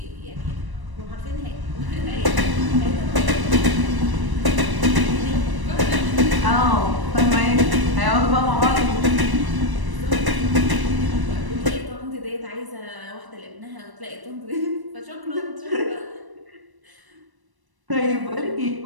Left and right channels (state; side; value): late; left; 1.0 ms